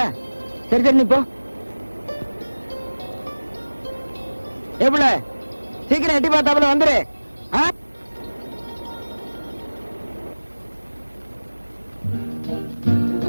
சரி சரி நீ போ. எப்பல சீக்கிரம் எட்டி பார்த்தாப்புல வந்துரு.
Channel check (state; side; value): inverted; both; correlation -1.00